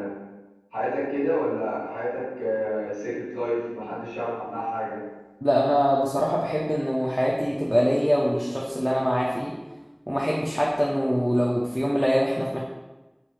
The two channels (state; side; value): identical; both; correlation 1.00